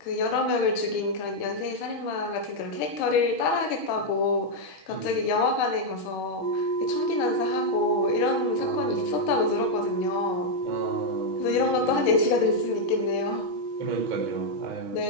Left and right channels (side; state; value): right; late; 6.2 ms